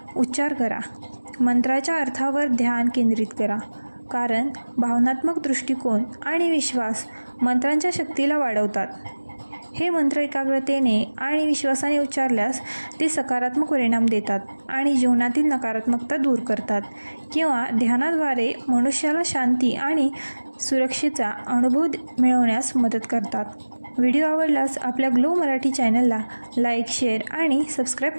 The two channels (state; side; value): inverted; both; correlation -1.00